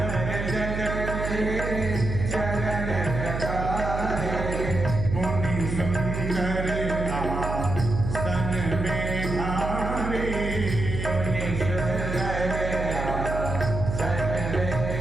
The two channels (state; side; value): noise; right; hum, 4 dB below the sound